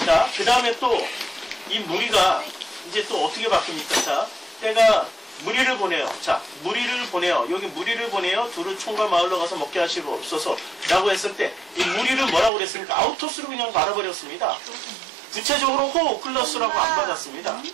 자, 그 다음에 또 이 무리가 이제 또 어떻게 바뀝니까? 자, 때가 무리를 보내요. 자, 무리를 보내요. 여기 무리를 보내요. 두루 총과 마을로 가서 먹게 하시옵소서 라고 했을 때 이 무리를 뭐라고 그랬습니까? 아우토스로 그냥 말아버렸습니다. 구체적으로 호 오클러스라고 안 받았습니다.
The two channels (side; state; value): left; drops out; at 12.5 s